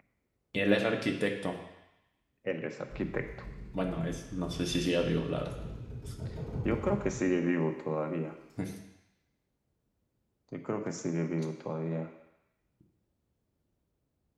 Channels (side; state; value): both; identical; correlation 1.00